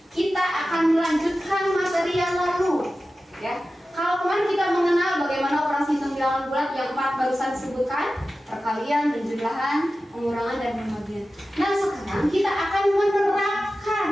kita akan melanjutkan materi yang lalu, ya. Kalau kemarin kita mengenal bagaimana operasi hitung bilangan bulat yang 4 barusan disebutkan, perkalian, penjumlahan, pengurangan, dan pembagian. Nah, sekarang kita akan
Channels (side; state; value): both; normal; correlation 0.94